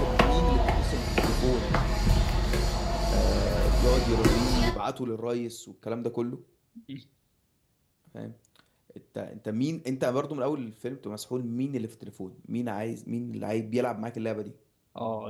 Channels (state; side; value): identical; both; correlation 1.00